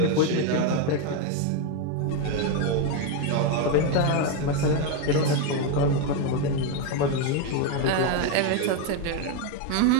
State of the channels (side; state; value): both; different; correlation 0.02